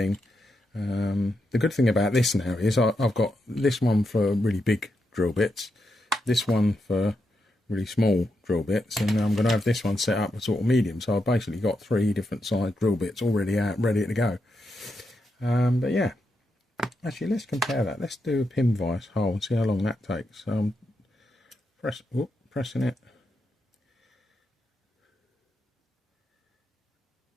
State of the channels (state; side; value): normal; both; correlation 0.84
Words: The good thing about this now is I've got this one for really big drill bits, this one for really small drill bits, and I'm going to have this one set up as sort of medium. So I've basically got 3 different size drill bits already out, ready to go. But yeah, actually let's compare that. Let's do a pin vise hole and see how long that takes. Pressing it.